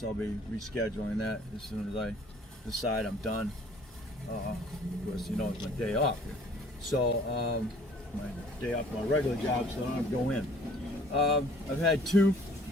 I'll be rescheduling that as soon as I decide I'm done. Of course, you know it's my day off, so my day off my regular job, so I don't have to go in. I've had two.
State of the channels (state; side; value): normal; both; correlation 0.55